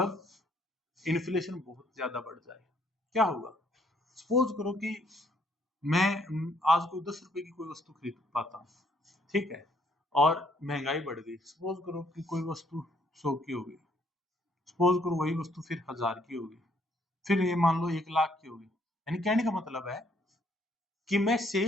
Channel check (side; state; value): both; normal; correlation 0.68